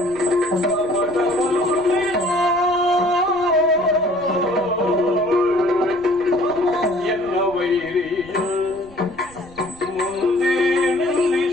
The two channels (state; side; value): noise; right; rumble, 22 dB below the sound